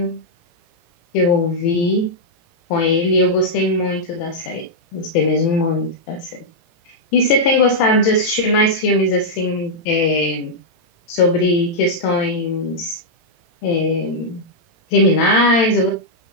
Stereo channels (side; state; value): right; late; 18 ms